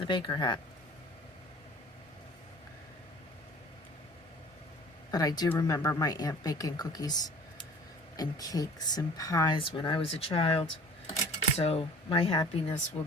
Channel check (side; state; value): both; normal; correlation 0.47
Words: baker hat. But I do remember my aunt baking cookies and cakes and pies when I was a child. So my happiness will